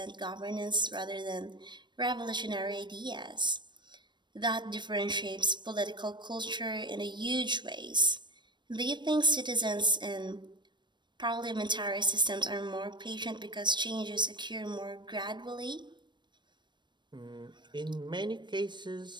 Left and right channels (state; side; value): late; left; 0.22 ms